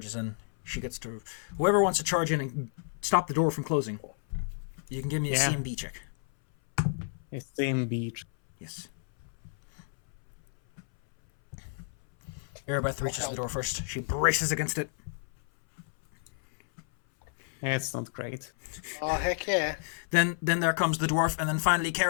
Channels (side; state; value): right; silent; 57 dB below the other